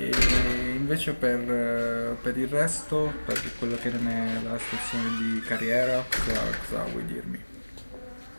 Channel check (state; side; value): inverted; both; correlation -1.00